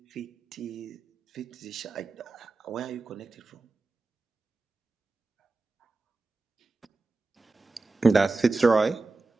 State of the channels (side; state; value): left; quieter; 3.5 dB